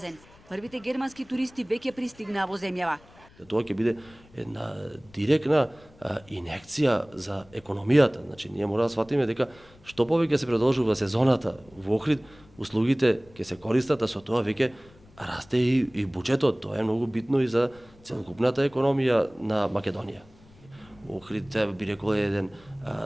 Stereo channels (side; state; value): left; noise; rumble, 26 dB below the sound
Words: Првите германски туристи веќе пристигнаа во земјава. Тоа ќе биде една директна инекција за економијата. Значи, ние мора да сватиме дека што повеќе се продолжува сезоната во Охрид, услугите ќе се користат, а со тоа веќе расте и буџетот. Тоа е многу битно и за целокупната економија на Македонија. Охрид, би рекол, е еден